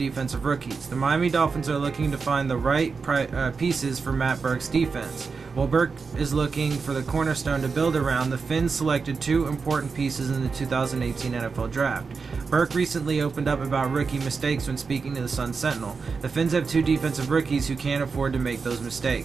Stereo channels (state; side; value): quieter; left; 5.0 dB